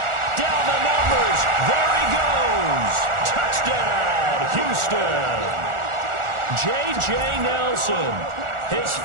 Down the numbers. There he goes. Touchdown, Houston. J.J. Nelson, his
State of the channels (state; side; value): late; left; 1.4 ms